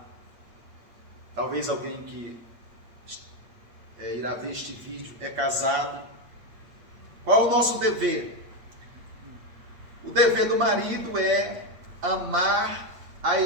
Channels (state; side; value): late; left; 8.5 ms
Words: talvez alguém que irá ver este vídeo é casado. Qual é o nosso dever? O dever do marido é amar a